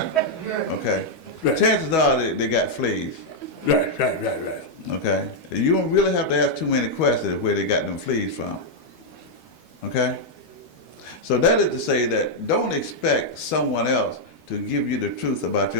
okay? Right. Chances are they got fleas, Right. okay? You don't really have to ask too many questions where they got them fleas from, okay? So that is to say that don't expect someone else to give you the truth about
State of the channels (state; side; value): late; right; 13 ms